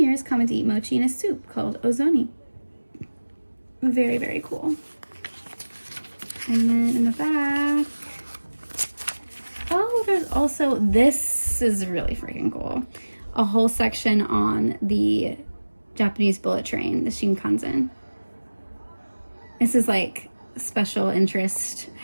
common to eat mochi in a soup called ozoni. Very, very cool. And then in the back, oh, there's also, this is really freaking cool, a whole section on the Japanese bullet train, the Shinkansen. This is like special interest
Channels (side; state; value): both; inverted; correlation -1.00